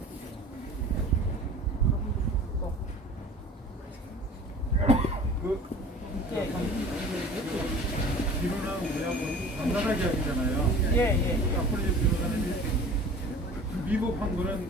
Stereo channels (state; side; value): normal; both; correlation 0.43